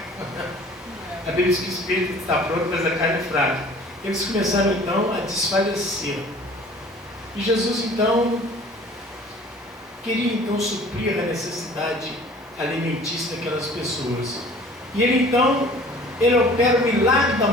A Bíblia diz que o espírito está pronto, mas a carne é fraca. Eles começaram então a desfalecer. E Jesus então queria então suprir a necessidade alimentícia daquelas pessoas. E ele opera o milagre da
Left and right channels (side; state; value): both; normal; correlation 0.49